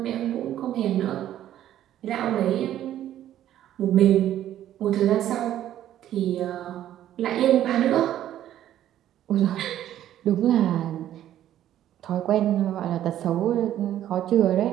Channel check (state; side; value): quieter; left; 12.0 dB